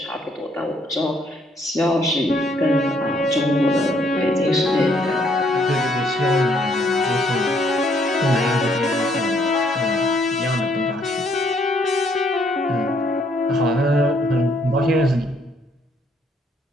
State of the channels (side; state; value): both; normal; correlation 0.68